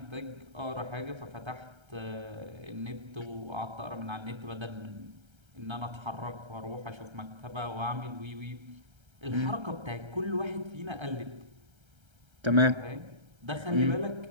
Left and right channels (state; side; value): late; left; 1.3 ms